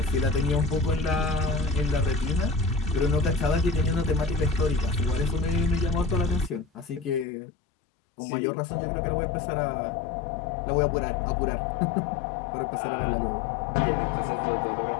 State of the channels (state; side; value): drops out; right; at 7.2 s